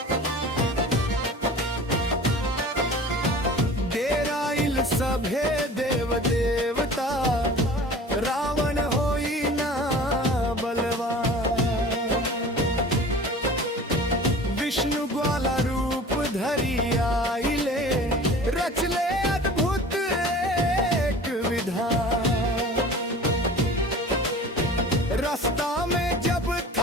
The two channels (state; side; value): normal; both; correlation 0.41